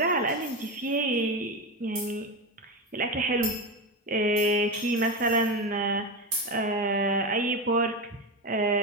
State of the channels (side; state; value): both; normal; correlation 0.17